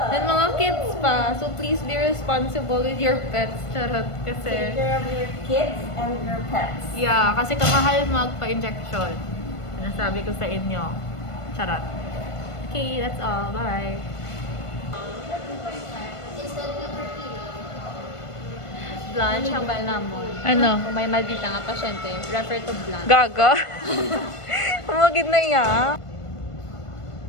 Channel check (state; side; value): late; right; 1.5 ms